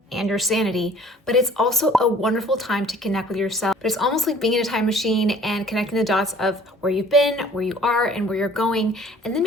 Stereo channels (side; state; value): both; normal; correlation 0.52